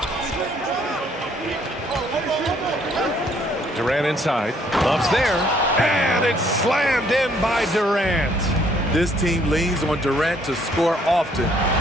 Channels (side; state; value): both; normal; correlation 0.65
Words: Durant inside. Love's there. And it's slammed in by Durant. This team leans on Durant to score often.